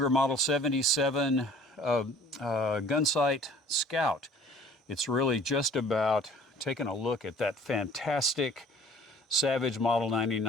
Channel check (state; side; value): normal; both; correlation 0.51